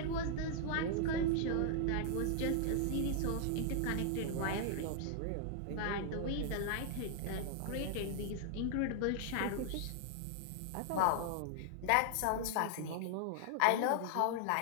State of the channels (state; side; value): different; both; correlation 0.00